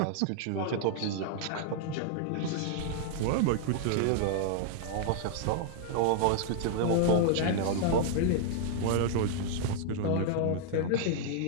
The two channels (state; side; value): different; both; correlation 0.00